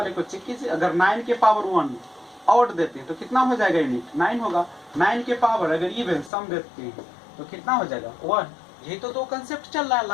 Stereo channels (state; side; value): drops out; right; at 6.3 s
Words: को चेक कीजिए, अगर 9 के पावर 1 ऑड देते हैं तो कितना हो जाएगा यूनिट 9 होगा, 9 के पावर अगर इवन सम देते हैं तो कितना हो जाएगा 1। यही तो दो कंसेप्ट चल रहा है